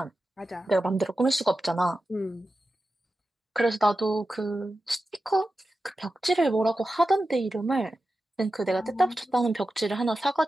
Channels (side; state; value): both; normal; correlation 0.92